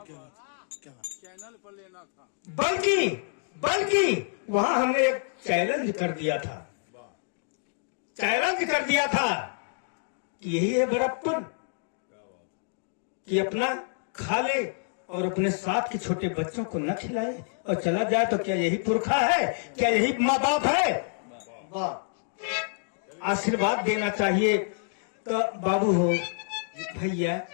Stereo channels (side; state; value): right; silent; digital silence